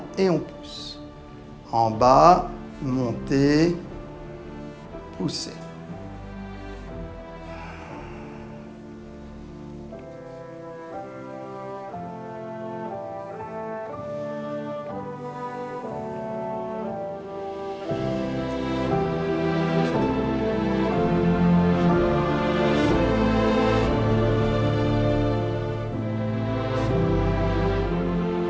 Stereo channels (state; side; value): identical; both; correlation 1.00